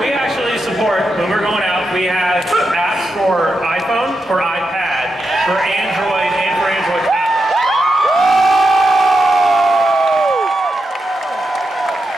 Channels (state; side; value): normal; both; correlation 0.86